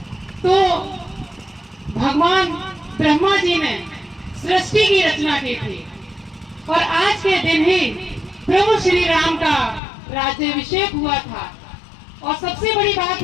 तो भगवान ब्रह्मा जी ने सृष्टि की रचना की थी और आज के दिन ही प्रभु श्री राम का राज्याभिषेक हुआ था। और सबसे बड़ी बात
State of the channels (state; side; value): drops out; right; at 9.8 s